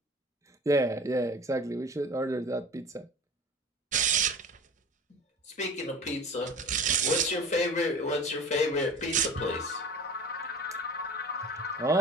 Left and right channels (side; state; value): both; normal; correlation 0.38